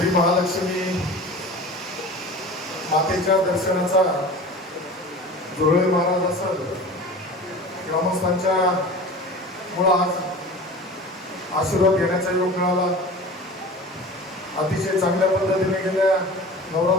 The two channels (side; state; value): both; normal; correlation 0.37